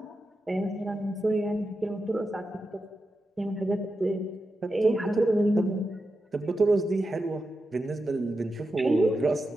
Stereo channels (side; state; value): both; normal; correlation 0.89